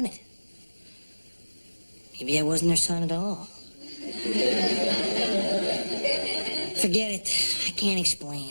Maybe I wasn't her son at all. Forget it. I can't explain.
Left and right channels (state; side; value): inverted; both; correlation -1.00